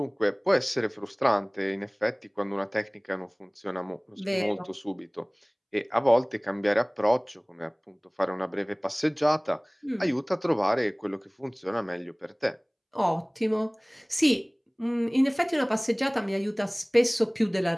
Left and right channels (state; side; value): identical; both; correlation 1.00